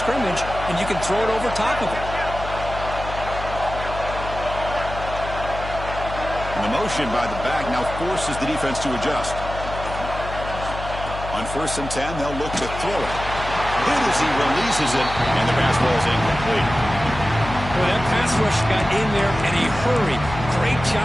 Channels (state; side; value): noise; left; hum, 9 dB below the sound